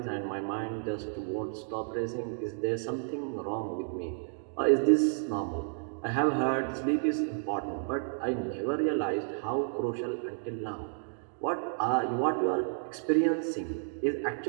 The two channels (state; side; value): silent; left; digital silence